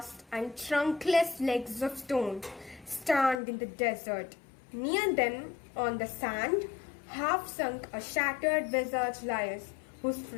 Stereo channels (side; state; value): right; drops out; at 3.4 s